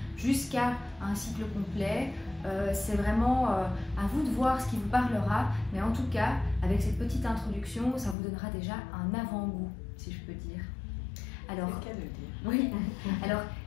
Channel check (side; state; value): right; drops out; at 8.2 s